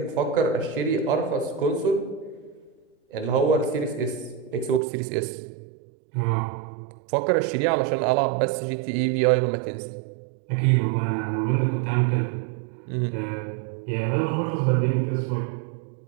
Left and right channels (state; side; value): drops out; left; at 4.8 s